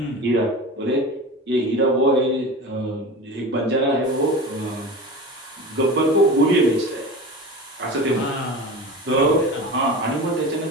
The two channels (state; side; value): normal; both; correlation 0.31